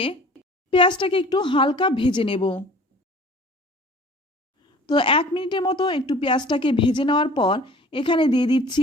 পেঁয়াজটাকে একটু হালকা ভেজে নেব। তো 1 মিনিটের মতো একটু পেঁয়াজটাকে ভেজে নেওয়ার পর এখানে দিয়ে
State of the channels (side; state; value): both; normal; correlation 0.47